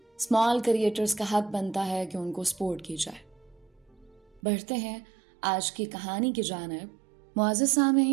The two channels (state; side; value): drops out; left; at 4.4 s